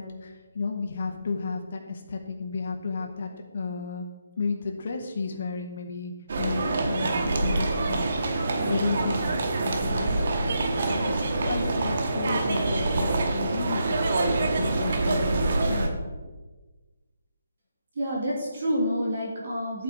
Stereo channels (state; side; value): inverted; both; correlation -0.81